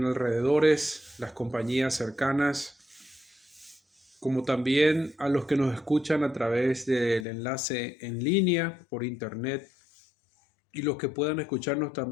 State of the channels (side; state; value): right; drops out; at 7.2 s